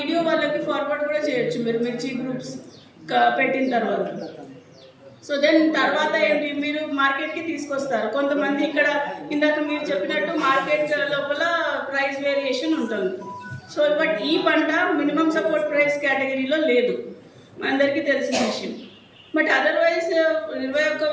వాళ్ళకి ఫార్వర్డ్ కూడా చేయొచ్చు మీరు మిర్చి గ్రూప్స్ పెట్టిన తర్వాత. సో దెన్ తర్వాత ఏంటి, మీరు మార్కెట్కి తీసుకొస్తారు. కొంతమంది ఇక్కడ ఇందాక మీరు చెప్పినట్టు మార్కెట్ లోపల ప్రైస్ వేరియేషన్ ఉంటుంది. సో బట్ ఈ పంట మినిమం సపోర్ట్ ప్రైస్ కేటగిరీలో లేదు, అందరికీ తెలిసిన విషయం. బట్ అదర్వైజ్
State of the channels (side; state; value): both; identical; correlation 1.00